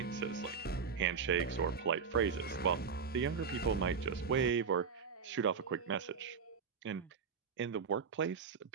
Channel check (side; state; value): left; quieter; 5.9 dB